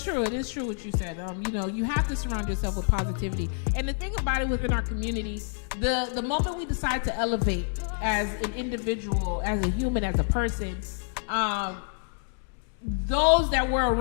true. It is true what you said. You know, you have to surround yourself with positivity. And the thing about it within our community, the moment we decide to elevate as an individual, as a human, as a person, those that were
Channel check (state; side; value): silent; right; digital silence